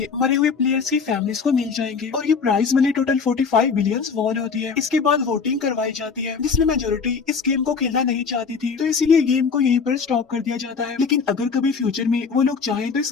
मरे हुए प्लेयर्स की फैमिलीज को मिल जाएंगे और ये prize money total 45 billion won होती है। इसके बाद वोटिंग करवाई जाती है जिसमें मेजोरिटी इस गेम को खेलना नहीं चाहती थी, तो इसीलिए गेम को यहीं पर स्टॉप कर दिया जाता है। लेकिन अगर कभी फ्यूचर में वो लोग चाहें तो इस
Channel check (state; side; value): quieter; right; 5.5 dB